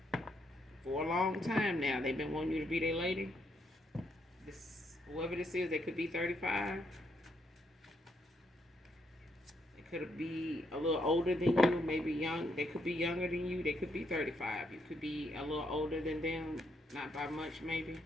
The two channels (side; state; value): both; normal; correlation 0.76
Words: for a long time now. They've been wanting you to be their lady. Whoever this is, they could be 35. Could be a little older than you, maybe young. They could be younger than you. They could be 35. You could be a little older than them, not by much maybe.